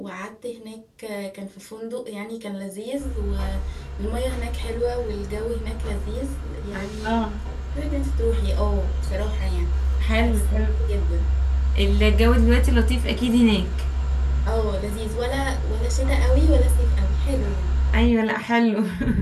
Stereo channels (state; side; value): identical; both; correlation 1.00